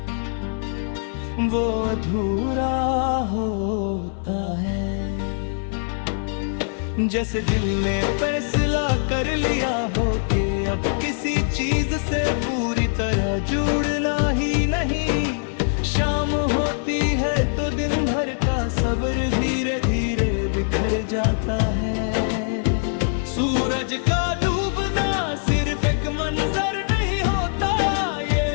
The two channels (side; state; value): right; silent; digital silence